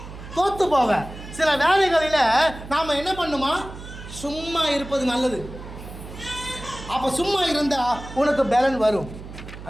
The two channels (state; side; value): noise; right; hum, 13 dB below the sound